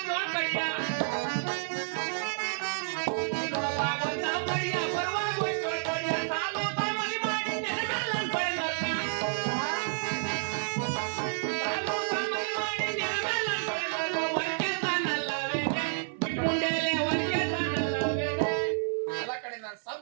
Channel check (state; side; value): silent; left; 58 dB below the other